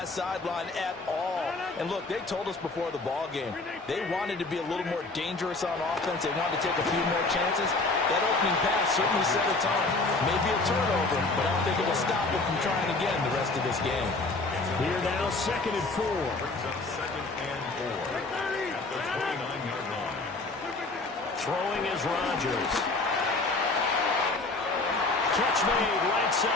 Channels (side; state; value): right; quieter; 3.4 dB